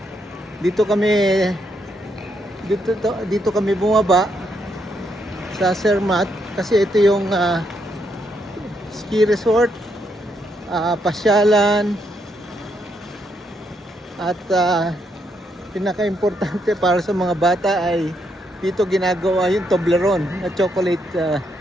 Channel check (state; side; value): normal; both; correlation 0.77